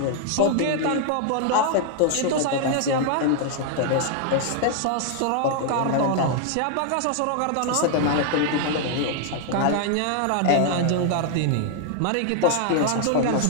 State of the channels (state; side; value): different; both; correlation 0.00